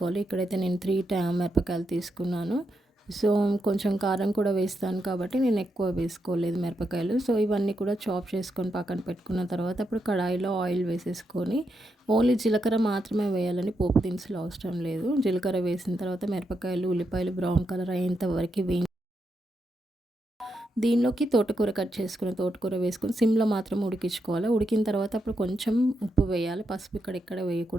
ఇక్కడైతే నేను 3 మిరపకాయలు తీసుకున్నాను. సో కొంచెం కారం కూడా వేస్తాను కాబట్టి నేను ఎక్కువ వేసుకోలేదు మిరపకాయలు. సో ఇవన్నీ కూడా చాప్ చేసుకొని పక్కన పెట్టుకున్న తర్వాత ఇప్పుడు కడాయిలో ఆయిల్ వేసేసుకొని ఓన్లీ జీలకర్ర మాత్రమే వేయాలని, పోపు దినుసులు అవసరం లేదు. జీలకర్ర వేసిన తర్వాత మిరపకాయలు, ఉల్లిపాయలు బ్రౌన్ కలర్ అయ్యేంత వరకు దీనిలోకి తోటకూర కట్ చేసుకుని తోటకూర వేసుకొని సిమ్లో మాత్రం ఉడికించుకోవాలి. ఉడికిన తర్వాత అప్పుడు కొంచెం ఉప్పు వేయాలి, పసుపు ఇక్కడ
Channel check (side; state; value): both; normal; correlation 0.83